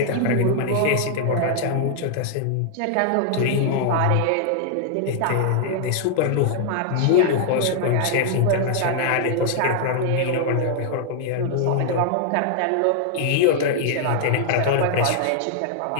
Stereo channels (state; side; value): different; both; correlation 0.00